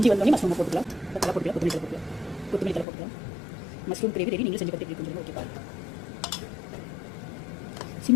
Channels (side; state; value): right; drops out; at 2.9 s